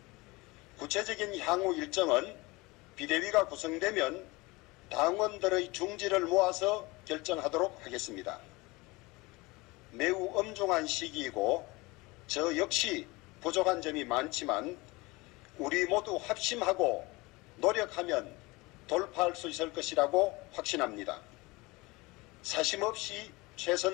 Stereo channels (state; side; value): quieter; right; 23.3 dB